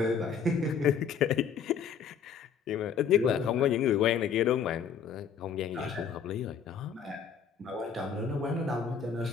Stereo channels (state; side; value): quieter; right; 6.9 dB